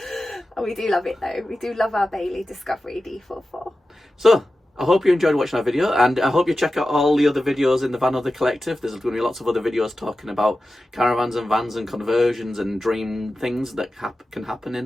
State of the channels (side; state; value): both; normal; correlation 0.93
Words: Oh, we do love it though. We do love our Bailey Discovery D44. So, I hope you enjoyed watching our video, and I hope you check out all the other videos in the Vanother Collective. There's going to be lots of other videos talking about caravans and vans and conversions and dream things that can happen